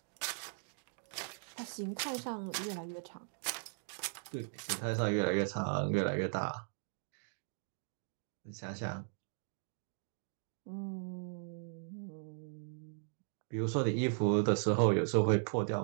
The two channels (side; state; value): left; silent; digital silence